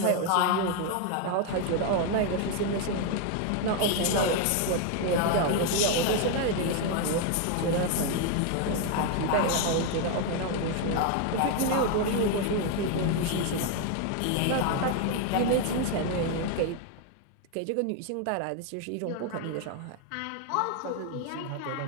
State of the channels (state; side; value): different; both; correlation 0.01